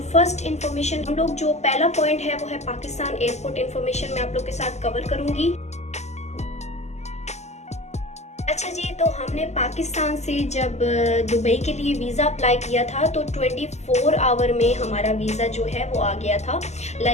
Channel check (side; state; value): right; late; 0.33 ms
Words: फर्स्ट इन्फॉर्मेशन हम लोग जो पहला पॉइंट है वो है पाकिस्तान एयरपोर्ट इन्फॉर्मेशन मैं आप लोग के साथ कवर करूंगी। अच्छा जी, तो हमने पाकिस्तान से जब दुबई के लिए वीज़ा अप्लाई किया था तो 24 आवर में हमारा वीज़ा जो है वो आ गया था।